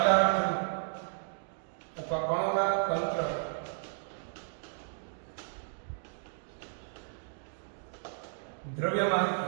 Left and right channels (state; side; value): silent; left; digital silence